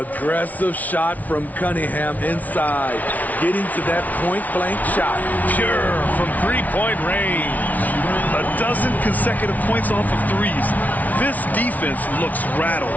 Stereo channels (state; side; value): late; right; 0.074 ms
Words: shot from Cunningham inside. Getting to that point-blank shot. Pure from three-point range. A dozen consecutive points off of threes. This defense looks